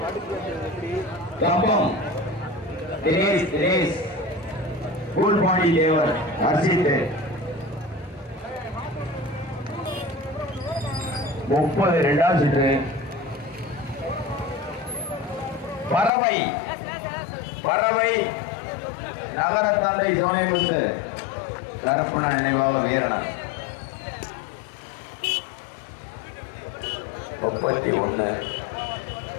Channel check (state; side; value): drops out; right; at 16.1 s